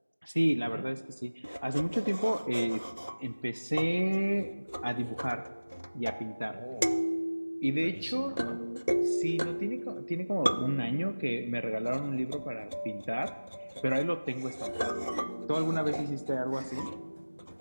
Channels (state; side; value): inverted; both; correlation -1.00